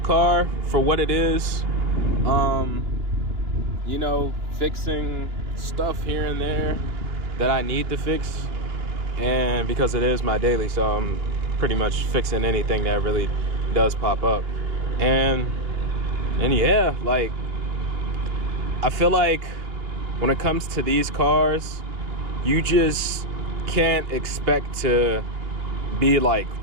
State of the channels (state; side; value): late; left; 2.9 ms